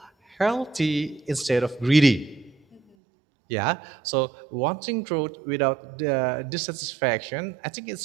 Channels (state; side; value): drops out; left; at 2.8 s